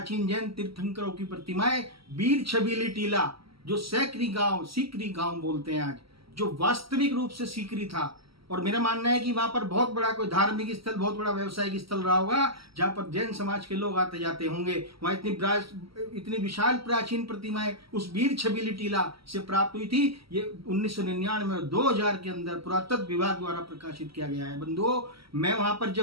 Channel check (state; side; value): late; left; 0.75 ms